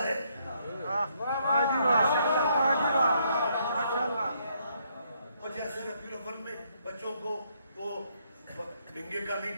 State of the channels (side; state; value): both; inverted; correlation -0.72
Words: ہے. اور جیسے ربیع الاول میں بچوں کو وہ ڈنگے کا نہیں